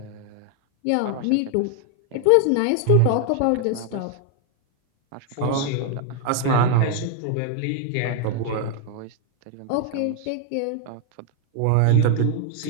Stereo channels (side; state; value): both; different; correlation 0.00